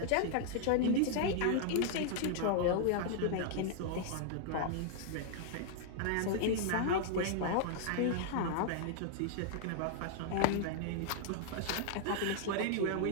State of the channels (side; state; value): both; different; correlation -0.01